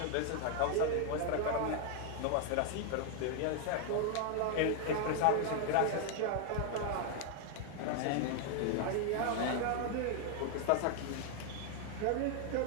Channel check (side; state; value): both; different; correlation 0.00